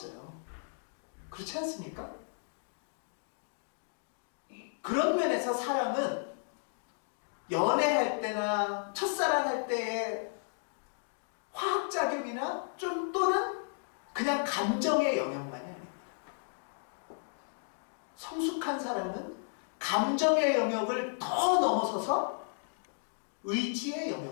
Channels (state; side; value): silent; right; digital silence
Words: 그렇지 않습니까? 그런 면에서 사랑은 연애할 때나 첫사랑할 때의 화학작용이나 좀 또는 그냥 감정의 영역만이 아닙니다. 성숙한 사랑은 감정의 영역을 더 넘어서서 의지의